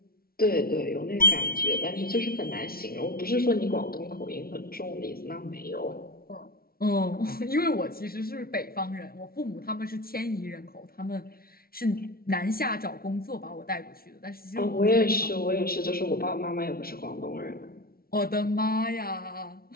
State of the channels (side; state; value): right; late; 0.44 ms